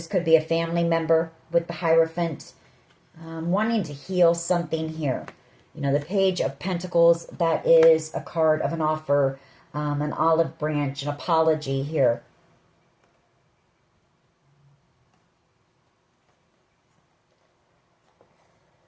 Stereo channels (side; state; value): both; identical; correlation 1.00